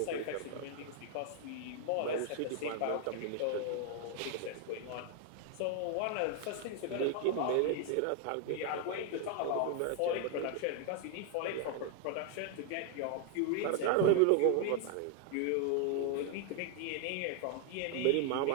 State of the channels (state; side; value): different; both; correlation 0.00